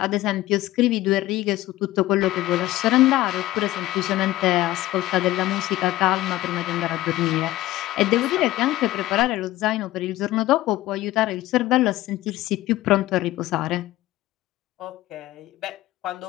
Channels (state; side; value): quieter; right; 16.3 dB